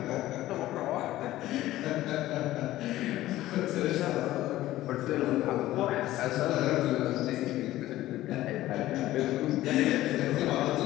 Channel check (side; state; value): right; quieter; 15.4 dB